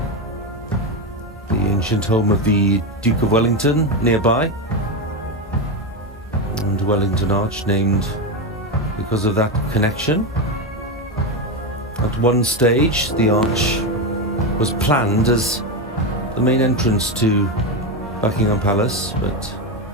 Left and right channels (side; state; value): both; normal; correlation 0.13